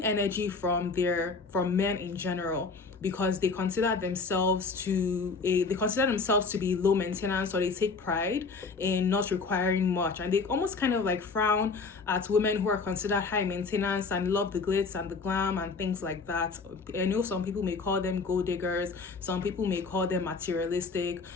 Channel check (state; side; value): quieter; right; 4.4 dB